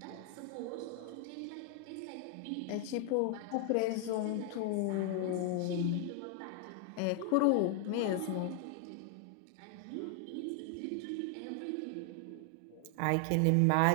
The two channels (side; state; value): both; different; correlation 0.00